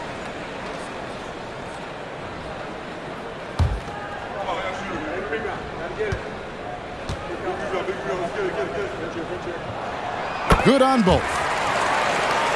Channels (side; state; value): both; identical; correlation 1.00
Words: Good on both.